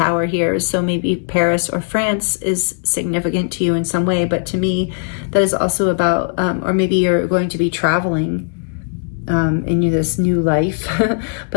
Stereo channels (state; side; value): silent; right; digital silence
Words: here. So maybe Paris or France is significant to you in some way, but to me, that is also about, or maybe you're going to be traveling in this new life.